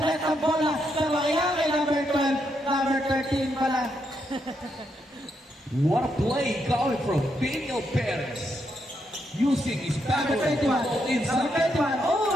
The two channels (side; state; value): both; normal; correlation 0.79